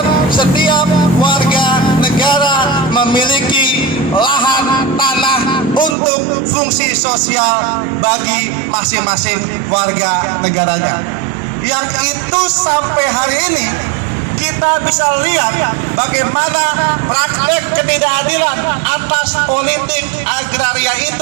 setiap warga negara memiliki lahan tanah untuk fungsi sosial bagi masing-masing warga negaranya. Yang itu sampai hari ini kita bisa lihat bagaimana praktek ketidakadilan atas politik agraria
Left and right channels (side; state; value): left; drops out; at 6.0 s